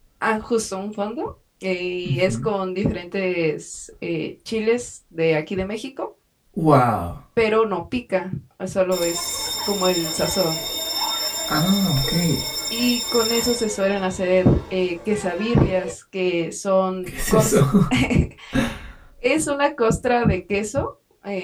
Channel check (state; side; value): identical; both; correlation 1.00